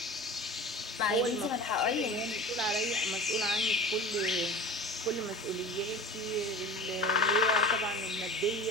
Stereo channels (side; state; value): both; normal; correlation 0.36